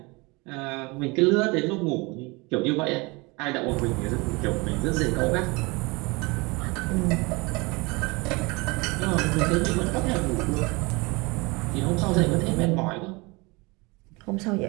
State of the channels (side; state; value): left; quieter; 26.2 dB